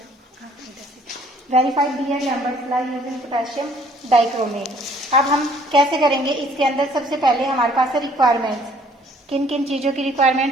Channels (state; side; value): normal; both; correlation 0.59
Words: Verified Beer Lambert's law using potassium dichromate. अब हम कैसे करेंगे? इसके अंदर सबसे पहले हमारे पास है रिक्वायरमेंट्स। किन किन चीजों की